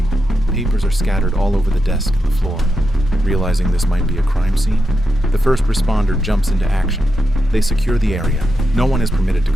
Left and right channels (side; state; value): both; normal; correlation 0.86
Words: Papers are scattered all over the desk and the floor. Realizing this might be a crime scene, the first responder jumps into action. They secure the area. No one is permitted to